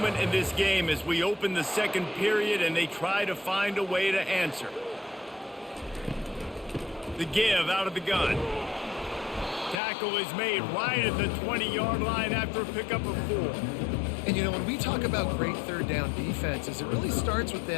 in this game as we open the second period and they try to find a way to answer. The give out of the gun. Tackle is made right at the 20-yard line after a pickup of 4. And, you know, when we talk about great third down defenses, it really starts with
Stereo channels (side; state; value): right; drops out; at 9.8 s